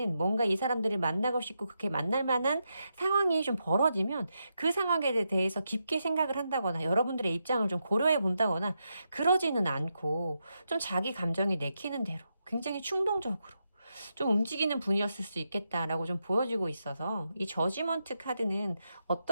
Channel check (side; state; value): both; inverted; correlation -0.85